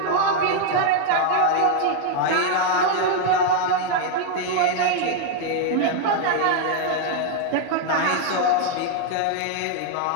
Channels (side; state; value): both; different; correlation 0.00